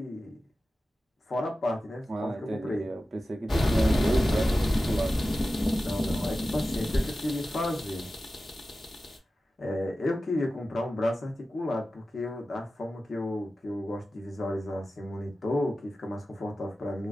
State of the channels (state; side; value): normal; both; correlation 0.94